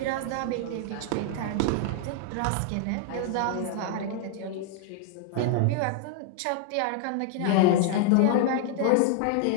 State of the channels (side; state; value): both; different; correlation -0.01